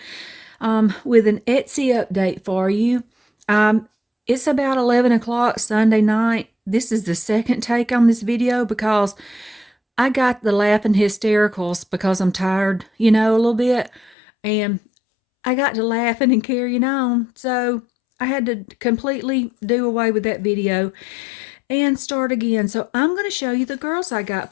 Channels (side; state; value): right; drops out; at 14.1 s